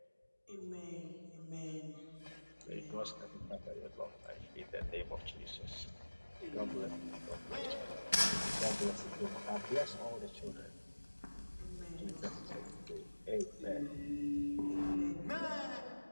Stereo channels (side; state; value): both; inverted; correlation -1.00